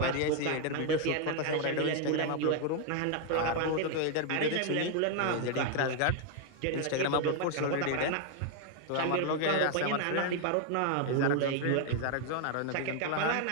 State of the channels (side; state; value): both; different; correlation 0.00